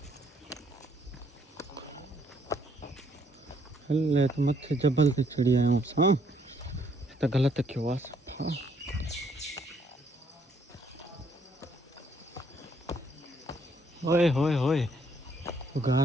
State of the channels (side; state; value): both; normal; correlation 0.68